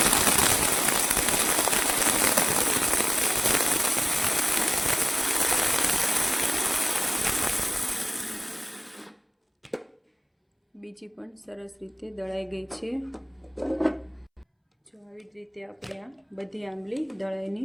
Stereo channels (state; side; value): identical; both; correlation 1.00